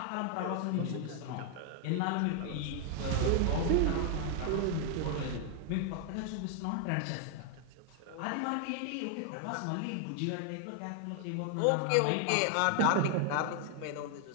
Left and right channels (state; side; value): different; both; correlation 0.00